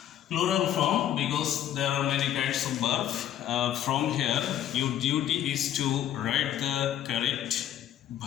Plural form because there are many kinds of verbs. From here, your duty is to write the correct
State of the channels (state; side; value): quieter; right; 11.2 dB